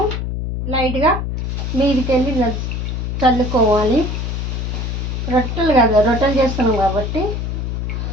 లైట్గా మీదికి వెళ్ళి చల్లుకోవాలి. రొట్టెలు కదా, రొట్టెలు చేస్తున్నాం కాబట్టి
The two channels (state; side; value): noise; left; hum, 2 dB below the sound